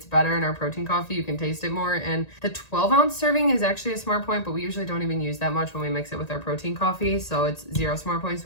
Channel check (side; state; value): right; late; 1.9 ms